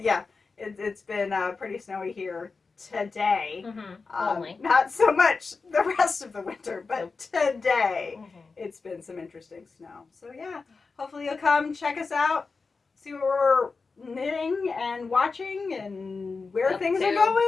Yeah, it's been pretty snowy here today. Only. Not so much the rest of the winter, but today it's been some interesting snow. So yeah, hopefully you'll come check us out, see what we're knitting and watching and where things are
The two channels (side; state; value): right; quieter; 4.4 dB